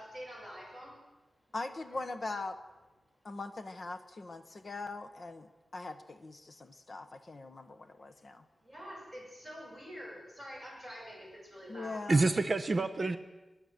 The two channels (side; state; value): both; normal; correlation 0.94